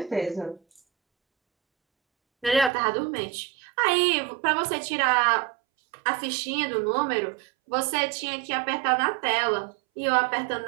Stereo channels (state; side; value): drops out; left; at 2.7 s